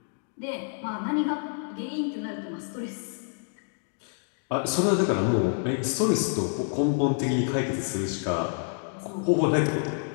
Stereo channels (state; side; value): silent; right; 57 dB below the other